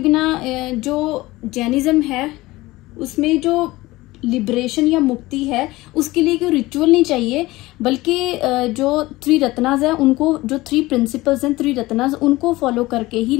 जो जैनिज्म है उसमें जो लिबरेशन या मुक्ति है उसके लिए कोई रिचुअल नहीं चाहिए, बल्कि जो 3 रत्नास है उनको, जो 3 प्रिंसिपल्स हैं 3 रत्नास, उनको फॉलो करके ही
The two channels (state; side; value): quieter; right; 19.4 dB